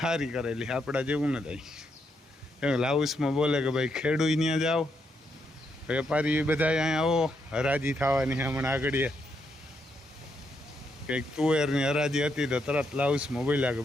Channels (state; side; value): normal; both; correlation 0.79